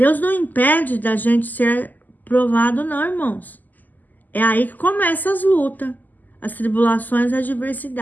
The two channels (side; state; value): right; late; 0.084 ms